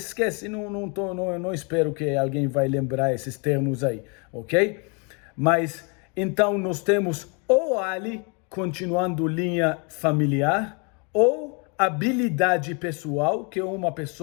esquece, não espero que alguém vai lembrar esses termos aí, ok? Mas, então, nós temos ou Ali continuando linha familiar, ou habilidade pessoal, que uma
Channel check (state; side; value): quieter; right; 34.3 dB